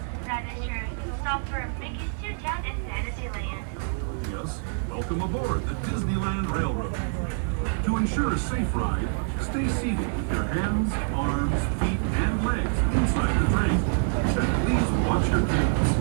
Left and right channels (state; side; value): silent; left; digital silence